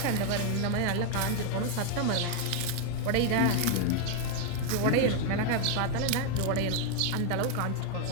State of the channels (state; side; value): different; both; correlation 0.01